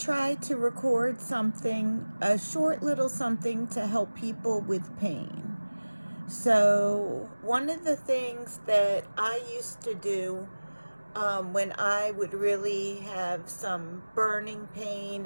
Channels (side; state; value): both; inverted; correlation -1.00